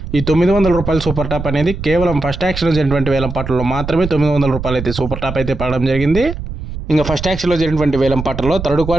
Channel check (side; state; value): right; noise; rumble, 8 dB below the sound